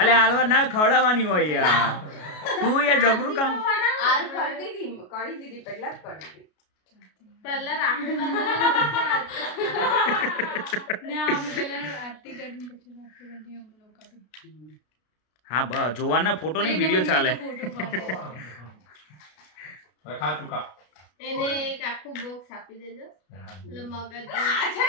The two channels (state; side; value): late; right; 33 ms